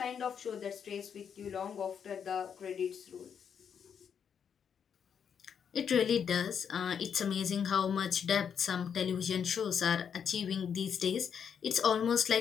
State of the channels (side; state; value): right; quieter; 7.5 dB